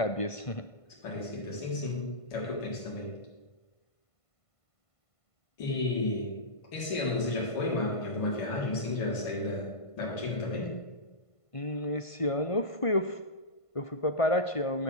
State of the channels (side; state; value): right; late; 1.5 ms